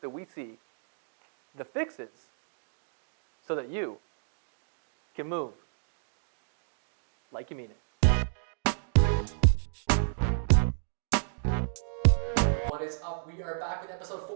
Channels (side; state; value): left; silent; digital silence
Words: that we see, the fixes, so that you can move like you mean it. What is up? We are back with episode